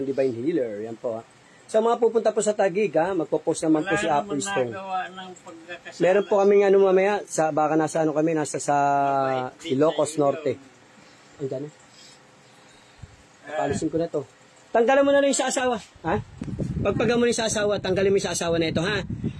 Divine Healer. Yan po ha. Sa mga pupunta po sa Taguig ha, magpo-post naman po si Apo Stone. nagawa ng pagkakasala. Meron po kaming ano mamaya, baka nasa ano kami, nasa sa Ilocos Norte. Andiyan na. Papalisin ko na to. Tanggalan mo na lang yung sa asawa. Ha? Pagpaga mo na yung sa asawa, tanggalin mo yung sa asawa na ito, ha?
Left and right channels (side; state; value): both; identical; correlation 1.00